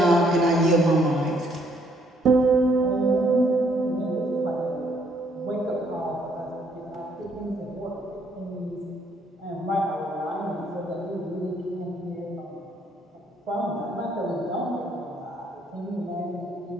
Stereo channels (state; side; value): normal; both; correlation 0.68